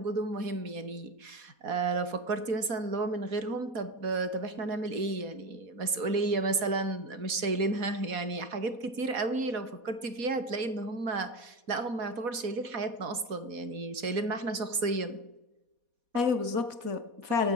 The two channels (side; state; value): left; late; 4.2 ms